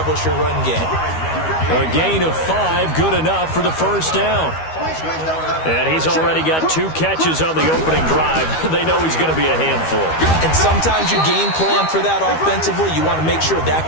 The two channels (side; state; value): right; late; 13 ms